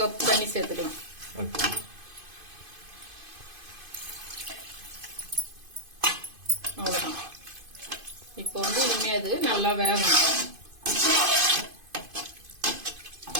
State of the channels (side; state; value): left; late; 2.5 ms